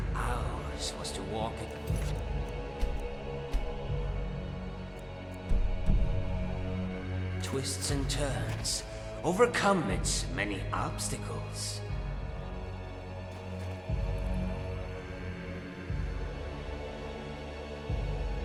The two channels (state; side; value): identical; both; correlation 1.00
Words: Ours was to walk it. Twists and turns, overcome its many obstacles.